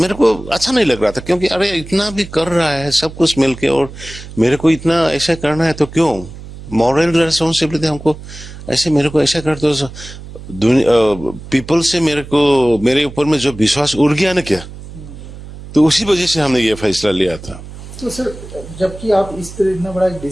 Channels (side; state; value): right; noise; hum, 14 dB below the sound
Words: को अच्छा नहीं लग रहा था, क्योंकि अरे इतना भी कर रहा है सब कुछ मिलके और मेरे को इतना ऐसा करना है, तो क्यों मॉरल रेस्पॉन्सिबिलिटी हमको ऐसे मेरे को ऐसा कर दो। पीपल से मेरे ऊपर में जो विश्वास उड़ गया ना क्या, तो उसी वजह से हमने ये फैसला लिया था। तो सर जबकि आप इस तरह इतना बड़ा